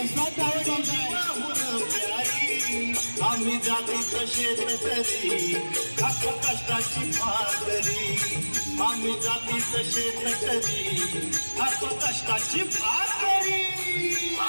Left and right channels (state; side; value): inverted; both; correlation -1.00